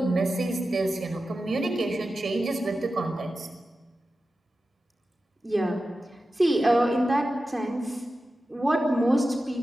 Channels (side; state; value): both; normal; correlation 0.93